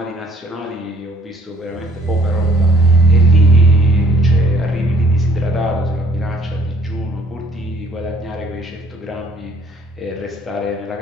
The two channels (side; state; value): both; normal; correlation 0.60